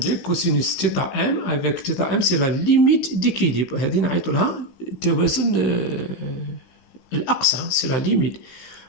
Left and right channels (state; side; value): late; right; 16 ms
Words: cosinus θm avec θm, c'est la limite d'équilibre. C'est la limite.